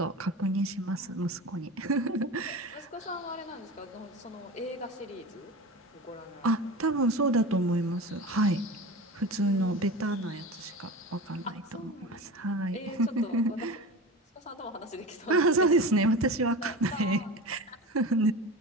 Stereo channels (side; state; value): both; normal; correlation 0.30